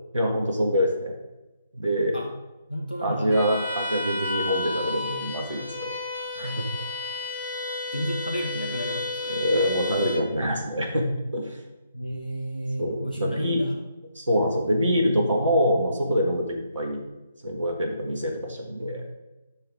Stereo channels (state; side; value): inverted; both; correlation -0.73